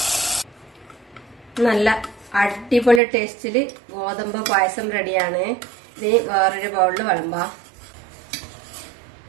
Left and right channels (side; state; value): left; drops out; at 3.0 s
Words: നല്ല അടിപൊളി ടേസ്റ്റില് ഗോതമ്പ് പായസം റെഡിയാണ്. ഇനി വേറൊരു ബൗളിൽ വിളമ്പാം.